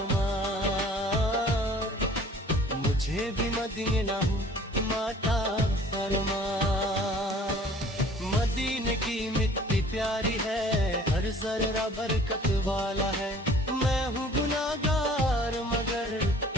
मुझे भी मदीना हूँ माता फरमा। मदीने की मिट्टी प्यारी है, हर जर्रा बरकत वाला है। मैं हूँ गुनाहगार, मगर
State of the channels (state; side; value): normal; both; correlation 0.51